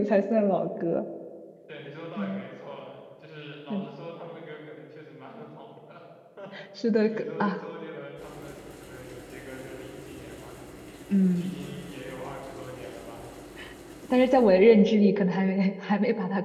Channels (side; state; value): both; identical; correlation 1.00